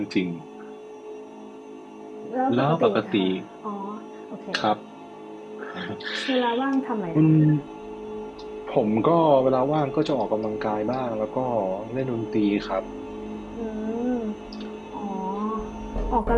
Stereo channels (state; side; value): identical; both; correlation 1.00